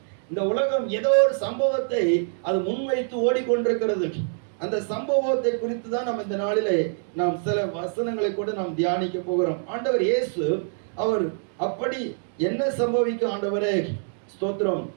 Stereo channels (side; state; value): left; silent; digital silence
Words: இந்த உலகம் ஏதோ ஒரு சம்பவத்தை அது முன்வைத்து ஓடிக்கொண்டிருக்கிறது. அந்த சம்பவத்தை குறித்து தான் நம்ம இந்த நாளிலே நாம் சில வசனங்களை கூட நாம் தியானிக்க போகிறோம். ஆண்டவர் இயேசு அவர் அப்படி என்ன சம்பவிக்கும்? ஆண்டவரே ஸ்தோத்திரம்,